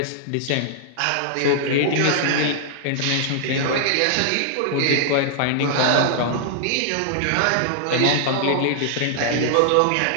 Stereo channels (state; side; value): different; both; correlation -0.01